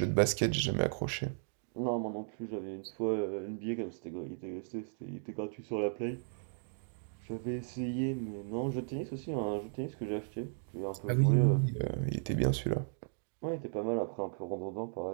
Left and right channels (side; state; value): left; silent; digital silence